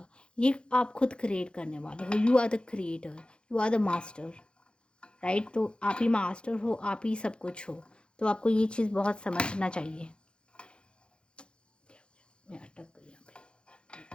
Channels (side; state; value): right; late; 0.054 ms